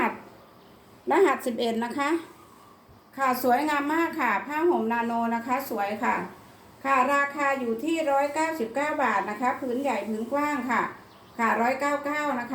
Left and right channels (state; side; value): identical; both; correlation 1.00